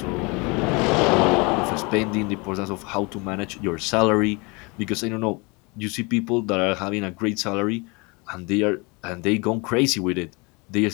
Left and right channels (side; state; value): right; quieter; 28.4 dB